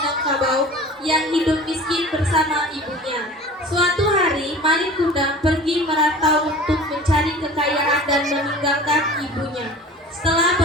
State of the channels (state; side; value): normal; both; correlation 0.41